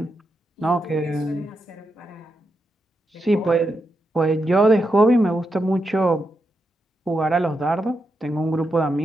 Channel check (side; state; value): both; normal; correlation 0.85